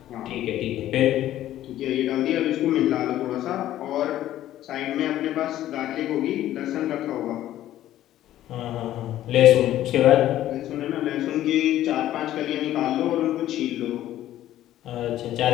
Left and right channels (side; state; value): right; quieter; 13.2 dB